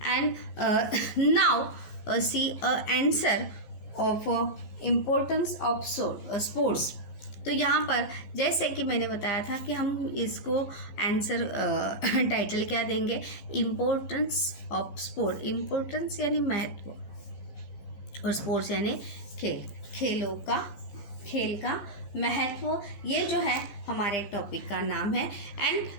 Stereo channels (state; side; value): late; right; 14 ms